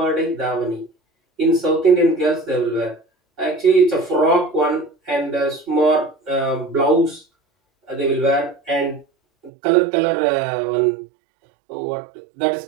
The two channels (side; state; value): left; drops out; at 9.5 s